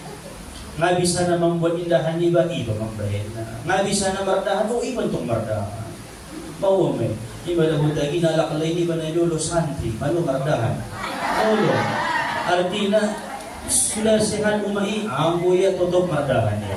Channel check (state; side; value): identical; both; correlation 1.00